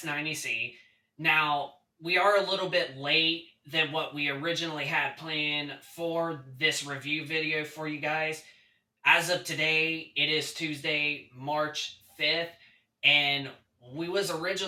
Now, we are a little bit late than what we originally had planned for this review video for you guys. As of today, it is Tuesday, March 5th, and we was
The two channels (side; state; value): both; identical; correlation 1.00